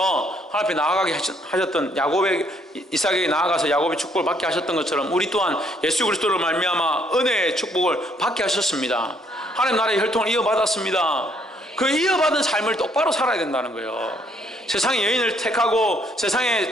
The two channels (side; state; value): both; normal; correlation 0.68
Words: 하나님 앞에 나아가게 하셨던 야곱의 이삭에게 나아가서 야곱의 축복을 받게 하셨던 것처럼 우리 또한 예수 그리스도로 말미암아 은혜의 축복을 받게 하셨습니다. 하나님 나라의 혈통을 이어받았습니다. 그 이어받은 삶을 똑바로 살아야 된다는 거예요. 세상의 여인을 택하고